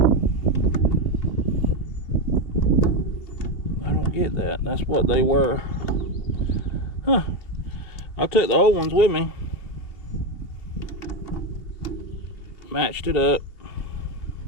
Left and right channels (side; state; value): right; late; 2.9 ms